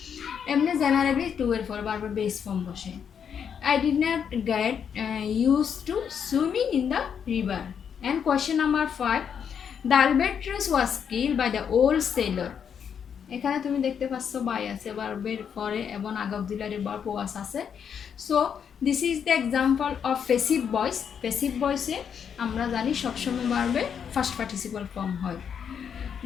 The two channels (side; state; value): right; quieter; 7.6 dB